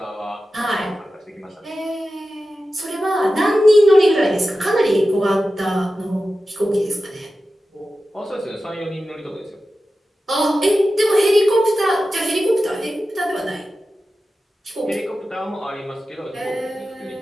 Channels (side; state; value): both; normal; correlation 0.93